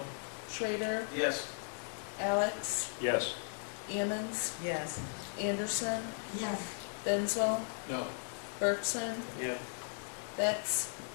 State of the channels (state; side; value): silent; right; 53 dB below the other